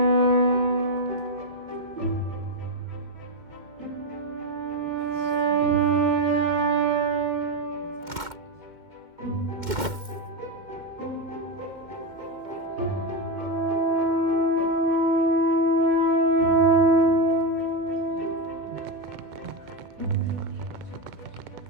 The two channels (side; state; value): left; late; 2.1 ms